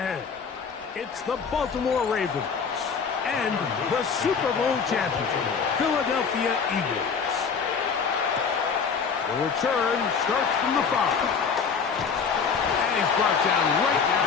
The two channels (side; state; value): right; quieter; 5.9 dB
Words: It's the Baltimore Ravens and the Super Bowl champion, Philadelphia Eagles. The return starts from the 5. And he's brought down right